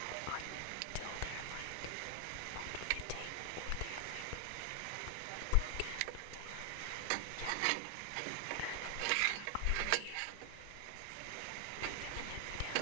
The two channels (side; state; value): both; different; correlation 0.00